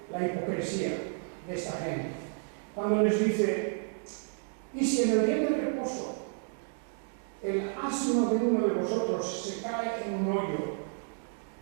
la hipocresía de esta gente? Cuando les dice, y si en el día del reposo el asno de uno de vosotros se cae en un hoyo,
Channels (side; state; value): left; silent; 56 dB below the other